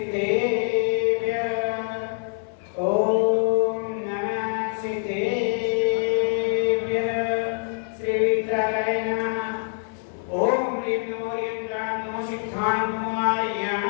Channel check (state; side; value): silent; right; 62 dB below the other